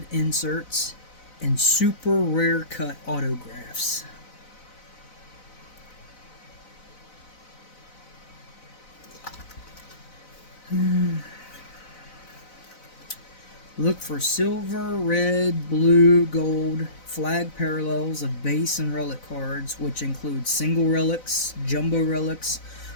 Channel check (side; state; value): right; late; 4.0 ms